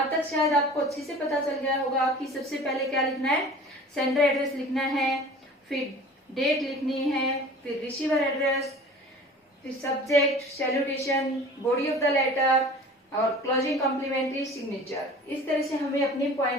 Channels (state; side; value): normal; both; correlation 0.43